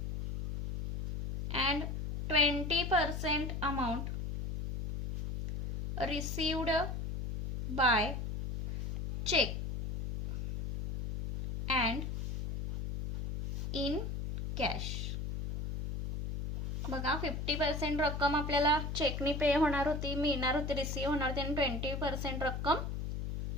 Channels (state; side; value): noise; left; hum, 4 dB below the sound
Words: and 20% amount received by check and in cash. बघा 50% रक्कम आपल्याला चेकनी पे होणार होती, मिळणार होती, रिसीव्ह होणार होती आणि 20% रक्कम